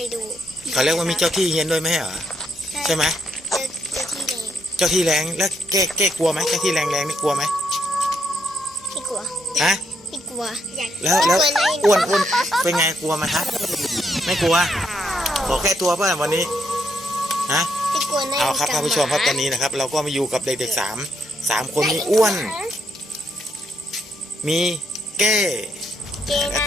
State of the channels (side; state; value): both; normal; correlation 0.76